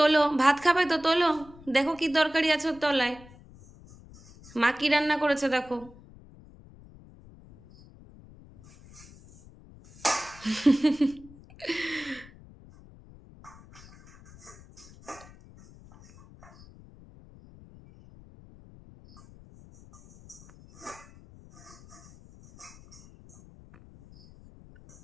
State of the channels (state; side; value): noise; left; rumble, 22 dB below the sound